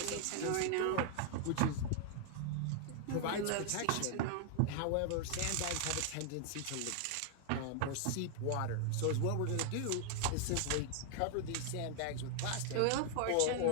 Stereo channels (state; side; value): different; both; correlation 0.00